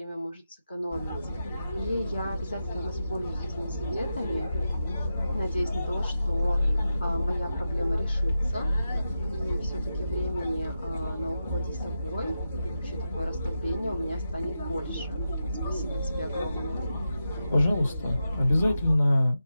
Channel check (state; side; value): inverted; both; correlation -0.89